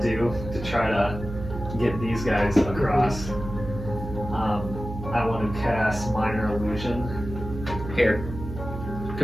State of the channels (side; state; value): right; noise; hum, 9 dB below the sound